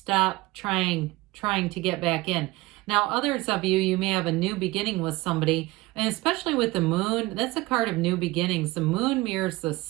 trying to get back in. Now, others of you may have a new beginning with somebody, and especially with the moon, that's a card of new beginnings. The moon mirrors the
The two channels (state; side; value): quieter; left; 20.2 dB